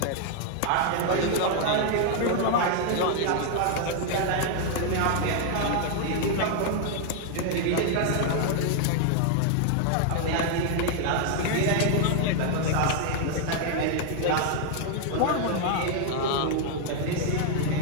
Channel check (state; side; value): different; both; correlation 0.00